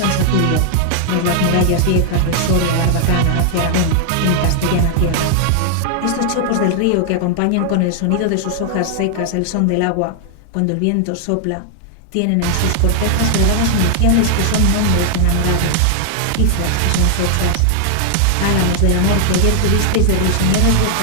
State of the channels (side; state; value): both; different; correlation 0.00